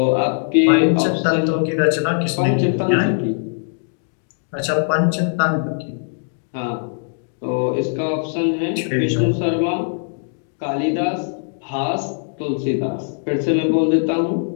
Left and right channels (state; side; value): silent; right; digital silence